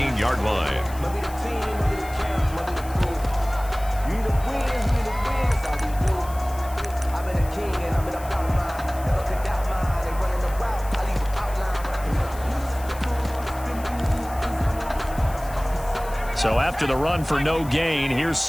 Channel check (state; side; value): noise; left; hiss, 18 dB below the sound